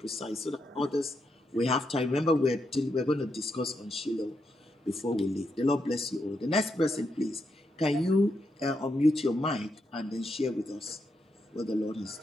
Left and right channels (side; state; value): both; normal; correlation 0.82